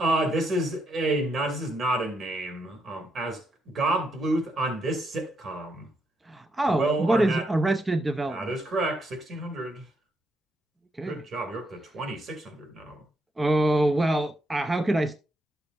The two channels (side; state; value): both; normal; correlation 0.79